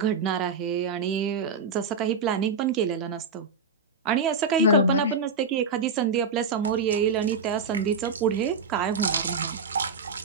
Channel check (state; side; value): quieter; left; 4.6 dB